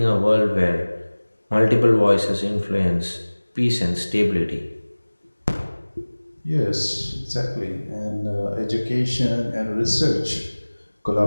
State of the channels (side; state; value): both; inverted; correlation -1.00